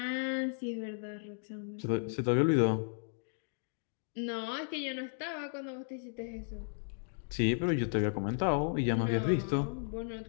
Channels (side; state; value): right; silent; digital silence